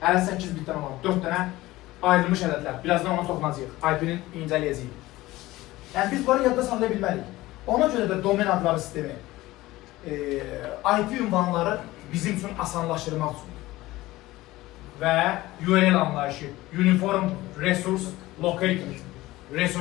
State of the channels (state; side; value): quieter; right; 18.0 dB